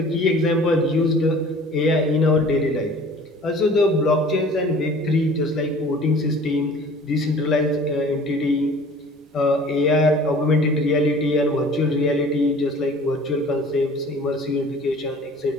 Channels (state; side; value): normal; both; correlation 0.47